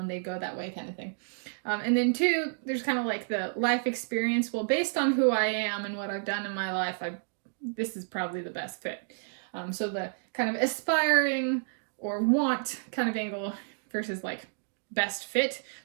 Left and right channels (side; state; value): left; silent; digital silence